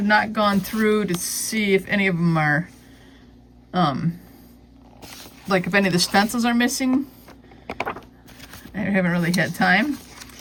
not gone through to see if any of them are, like if any of the stencils are missing. I haven't really had time.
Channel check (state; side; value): identical; both; correlation 1.00